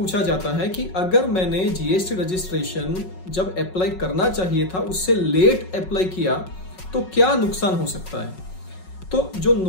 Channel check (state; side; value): late; right; 5.4 ms